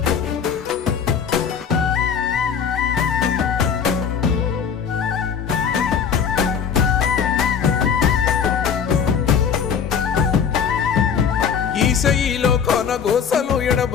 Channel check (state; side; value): quieter; right; 7.1 dB